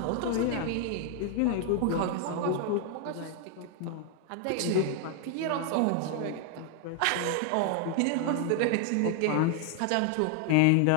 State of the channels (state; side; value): different; both; correlation 0.00